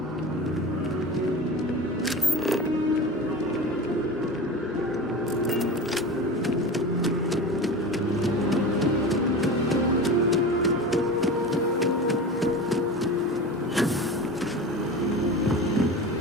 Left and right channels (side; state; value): both; normal; correlation 0.30